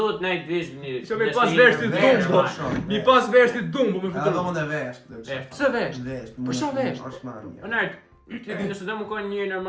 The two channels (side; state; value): both; identical; correlation 1.00